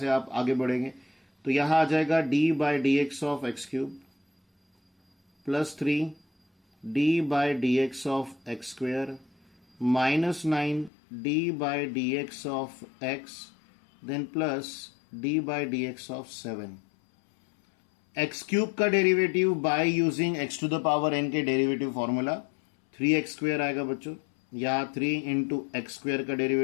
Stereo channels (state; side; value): drops out; right; at 10.9 s